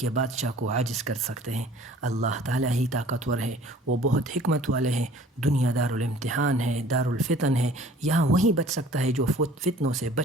بادشاہ کو عاجز کر سکتے ہیں۔ اللہ تعالیٰ ہی طاقتور ہے، وہ بہت حکمت والے ہیں۔ دنیا دار الامتحان ہے، دار الفتن ہے۔ یہاں وہی بچ سکتا ہے جو فتنوں سے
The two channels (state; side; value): normal; both; correlation 0.50